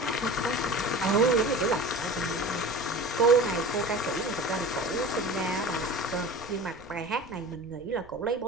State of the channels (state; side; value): noise; right; rumble, 23 dB below the sound